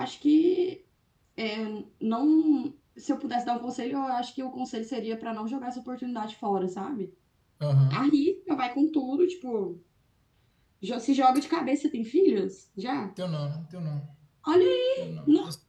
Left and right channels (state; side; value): identical; both; correlation 1.00